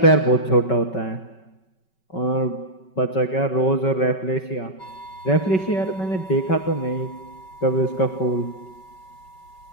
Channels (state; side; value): late; right; 5.3 ms